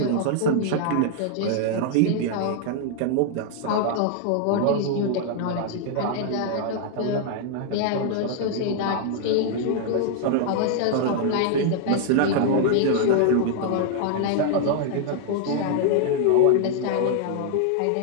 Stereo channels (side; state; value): both; different; correlation -0.01